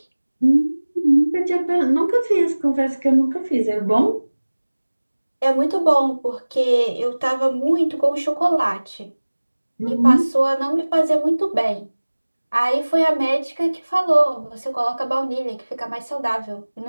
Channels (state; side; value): inverted; both; correlation -1.00